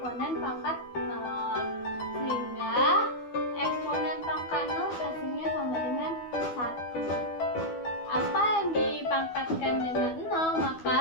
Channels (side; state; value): right; late; 12 ms